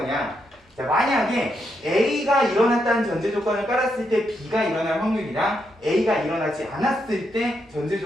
자 만약에 A가 일어났다는 전제 조건을 깔았을 때 B가 일어날 확률이랑 A가 일어나지 않았을 때 전제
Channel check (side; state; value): both; normal; correlation 0.80